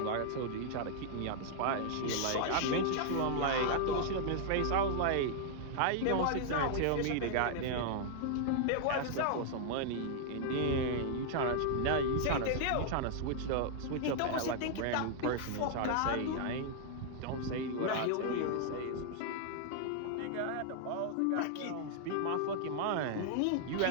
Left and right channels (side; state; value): both; different; correlation -0.01